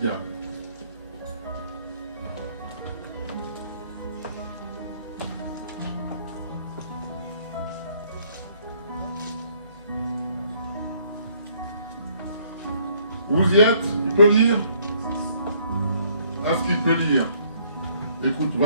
Vous y êtes? Il peut lire? Est-ce qu'il peut lire? Écoute,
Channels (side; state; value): both; inverted; correlation -0.64